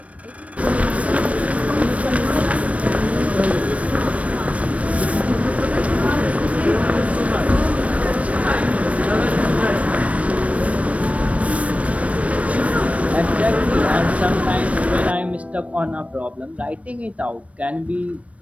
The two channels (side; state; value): left; late; 0.065 ms